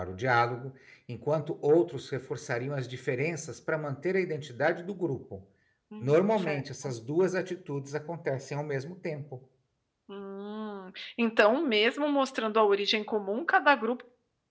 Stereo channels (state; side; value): identical; both; correlation 1.00